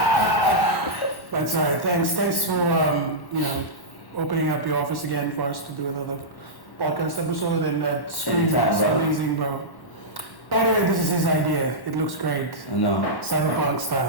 That's all right. Thanks for opening up your office again for us to do another podcast episode. And that screen is amazing, bro. By the way, this is his idea. It looks great. I know. Cyberpunk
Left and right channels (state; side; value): late; right; 1.1 ms